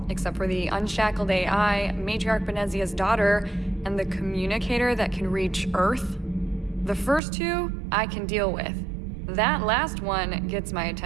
except for the unshackled AI, Matriarch Benezia's daughter, and the communicator that can reach Earth. The first two, I can deal with. That last one gets my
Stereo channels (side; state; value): left; drops out; at 7.2 s